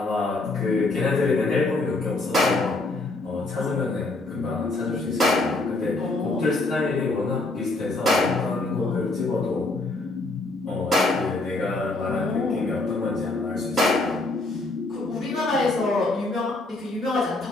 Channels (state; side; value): quieter; right; 3.0 dB